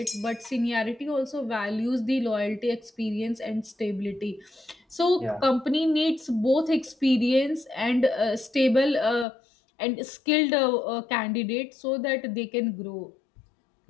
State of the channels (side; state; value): right; drops out; at 9.2 s